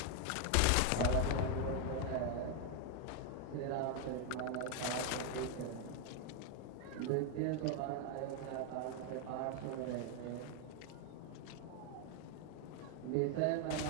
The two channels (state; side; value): different; both; correlation 0.01